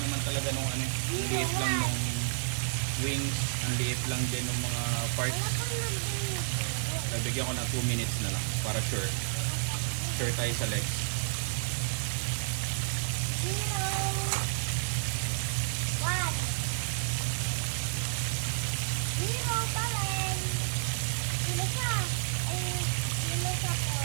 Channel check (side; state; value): left; silent; digital silence